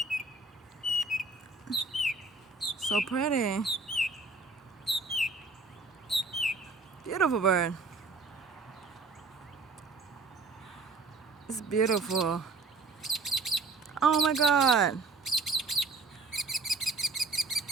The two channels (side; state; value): left; quieter; 3.8 dB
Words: So pretty. Beautiful bird. It's beautiful. Oh my god.